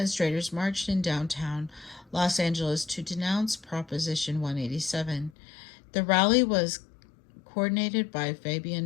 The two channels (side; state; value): right; drops out; at 5.3 s